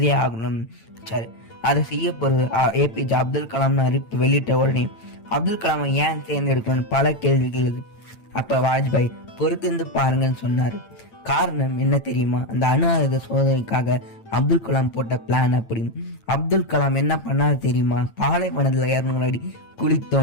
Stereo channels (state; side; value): late; right; 8.8 ms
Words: ஆகணும்னு வச்சாரு. அதை செய்ய போறது ஏபிஜே அப்துல் கலாம்னு அறிவிப்பு வெளியிட்ட உடனே அப்துல் கலாமை ஏன் தேர்ந்தெடுக்கணும்னு பல கேள்விகள். அப்ப வாஜ்பாய் பொறுத்திருந்து பாருங்கன்னு சொன்னாரு. காரணம் என்ன தெரியுமா? அந்த அணு ஆயுத சோதனைக்காக அப்துல் கலாம் போட்ட பிளான். அப்படி அப்துல் கலாம் என்ன பண்ணாரு தெரியுமா? பாலைவனத்துல 200 அடி குழி